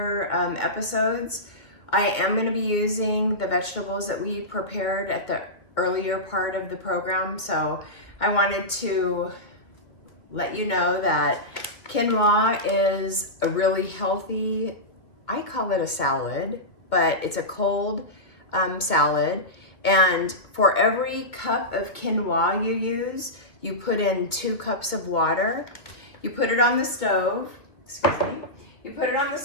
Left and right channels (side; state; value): right; late; 2.4 ms